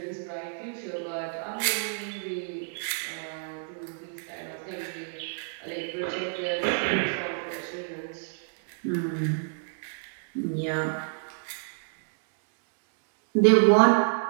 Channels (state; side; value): silent; left; digital silence